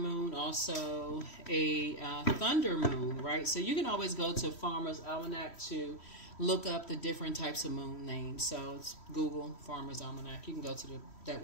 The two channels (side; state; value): right; late; 3.1 ms